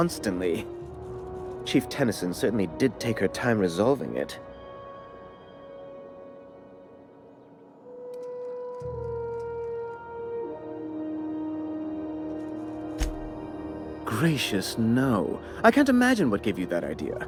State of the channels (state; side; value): identical; both; correlation 1.00